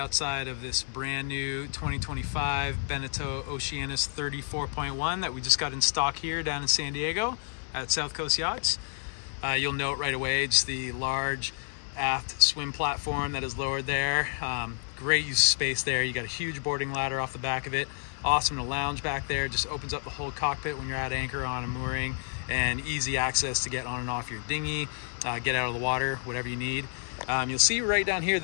of this brand new 2025 Beneteau Oceanis 34.1 that we just got in stock here down in San Diego at South Coast Yachts. You'll note right away just the large aft swim platform that is lowered there. Great use of space there. You got a huge boarding ladder off the back of it. Awesome to lounge back there. Just opens up the whole cockpit when you're at anchor on a mooring, and easy access to get on and off your dinghy, get out of the water, whatever you need. You'll see right down here,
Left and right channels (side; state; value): right; silent; 58 dB below the other